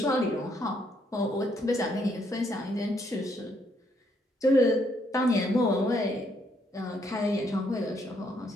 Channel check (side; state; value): both; normal; correlation 0.72